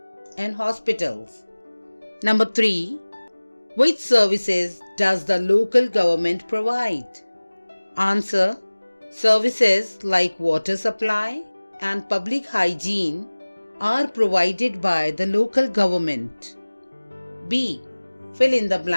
and hospitals. Number 3. Which services does the local government provide? Answer. Services like water supply and public hygiene are provided by the local government. B. Fill in the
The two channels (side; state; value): both; inverted; correlation -1.00